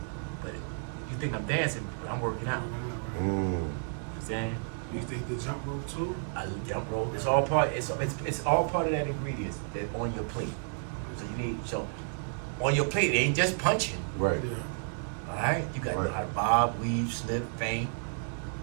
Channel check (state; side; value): silent; left; digital silence